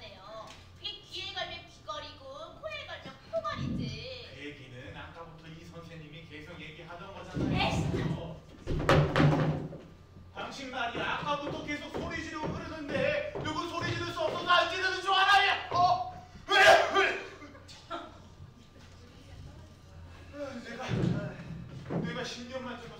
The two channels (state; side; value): identical; both; correlation 1.00